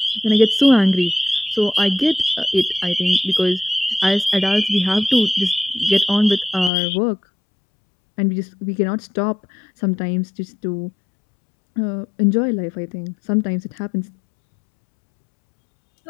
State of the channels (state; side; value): drops out; right; at 6.7 s